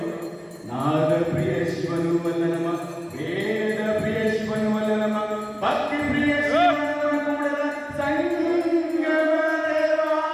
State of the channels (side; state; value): both; identical; correlation 1.00